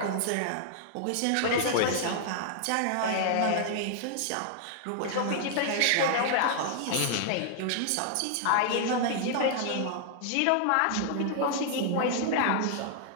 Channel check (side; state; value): both; different; correlation -0.01